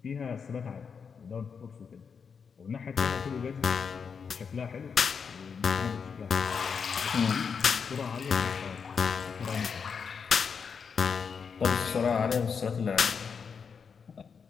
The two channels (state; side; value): quieter; right; 6.1 dB